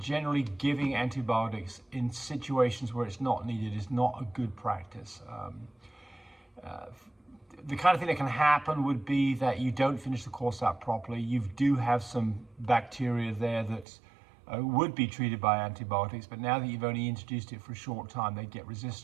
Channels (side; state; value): left; drops out; at 13.9 s